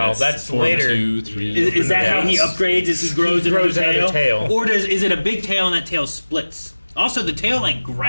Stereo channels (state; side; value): inverted; both; correlation -1.00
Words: that's four, later. 2, 3. Is that how he upgrades as he grows another another tail. Or is it a big tail and that tail splits? Also, the tail like